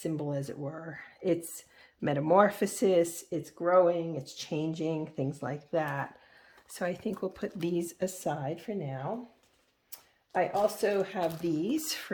as it were. It's metamorphosis, it's growing, it's changing, things like that. So I think we'll put these aside for now. I also have these for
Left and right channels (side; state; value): both; identical; correlation 1.00